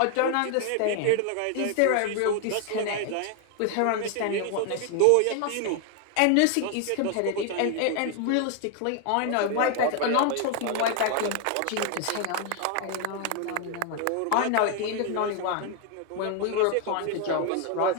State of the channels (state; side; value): different; both; correlation 0.01